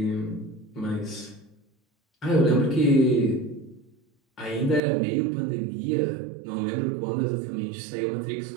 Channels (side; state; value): left; drops out; at 4.8 s